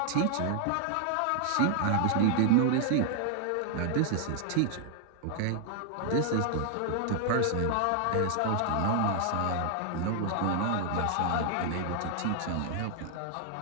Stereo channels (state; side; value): different; both; correlation 0.00